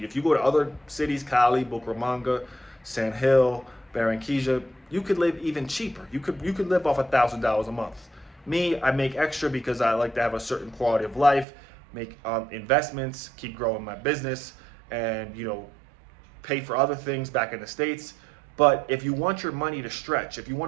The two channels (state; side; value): drops out; left; at 11.5 s